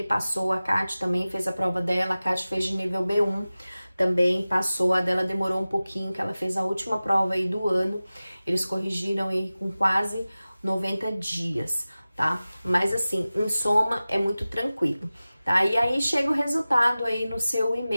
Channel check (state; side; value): inverted; both; correlation -0.97